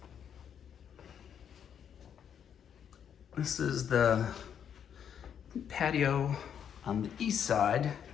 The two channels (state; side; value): quieter; right; 8.4 dB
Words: This is the patio on the east side,